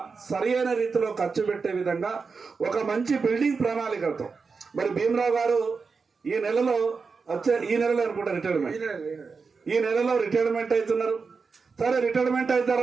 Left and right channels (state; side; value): quieter; left; 4.9 dB